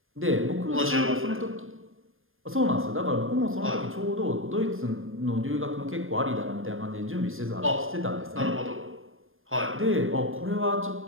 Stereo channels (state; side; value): late; left; 0.60 ms